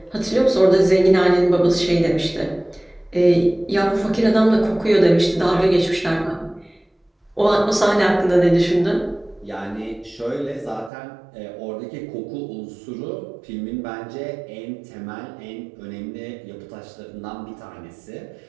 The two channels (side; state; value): left; drops out; at 10.9 s